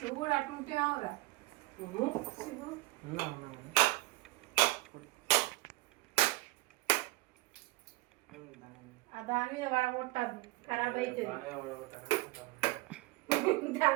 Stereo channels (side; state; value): left; quieter; 20.7 dB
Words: నువ్వు కూడా అట్లుంటే కావురా దాని మీద పడగొట్టద్దు, ఖరాబ్ అవుతుంది.